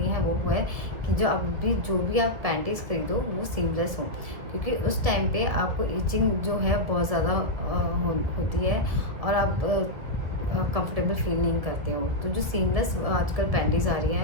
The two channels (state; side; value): late; left; 1.9 ms